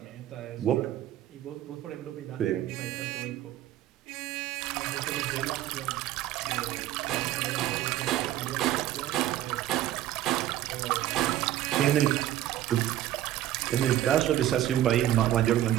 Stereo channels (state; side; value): quieter; left; 13.1 dB